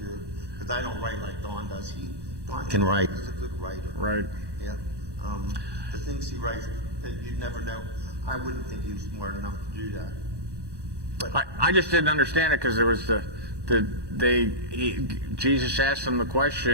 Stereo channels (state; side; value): late; left; 1.1 ms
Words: Because I don't write like Dawn does. Dawn can write. He's a good writer. Right. Yeah. The things he writes, you'd never know. I wouldn't think he was smart enough to do that. But I just didn't understand it because there was Jesus asked them the